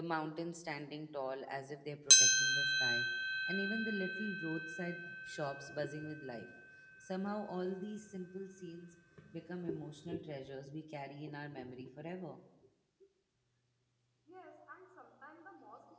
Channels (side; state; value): both; identical; correlation 1.00